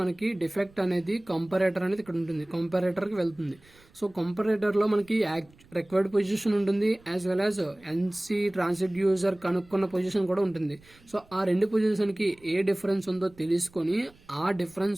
మనకి డిఫెక్ట్ అనేది కంపారేటర్ అనేది ఇక్కడ ఉంటుంది, కంపారేటర్కి వెళ్తుంది. సో కంపారేటర్లో మనకి రిక్వైర్డ్ పొజిషన్ ఉంటుంది, as well as NC transducer కనుక్కున్న పొజిషన్ కూడా ఉంటుంది. సో ఆ రెండు పొజిషన్కి ఏ డిఫరెన్స్ ఉందో తెలుసుకొని ఆ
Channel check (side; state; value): right; noise; rumble, 28 dB below the sound